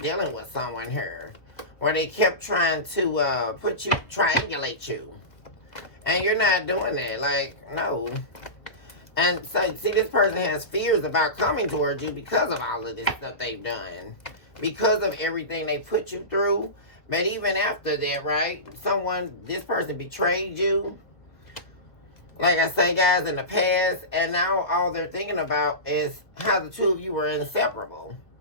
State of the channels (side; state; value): right; late; 1.7 ms